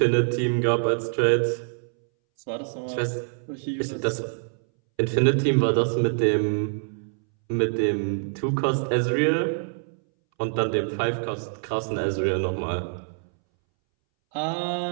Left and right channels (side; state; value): left; silent; 62 dB below the other